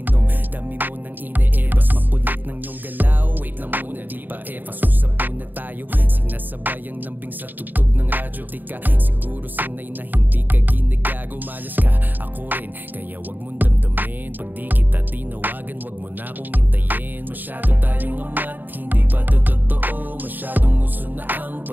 dami mo nang ine-ebas. Mapulit ng iyong galaw, wait lang muna di ba efas. Usap muna tayo, sinasabay ang lambing sa tugtog ng radyo. Di ka siguro sanay na hindi ka ginagago. Malas ka, ako rin, kaya wag mong damdamin. Pag di kita tinawagan, wag mo na akong hintayin. Masyado tayong amat, hindi pa to totoo. Masyadong uso na ang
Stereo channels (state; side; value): late; left; 0.089 ms